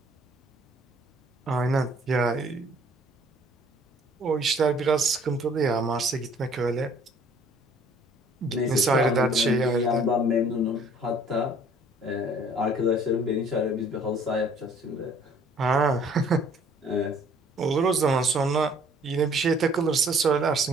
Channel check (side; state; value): both; normal; correlation 0.57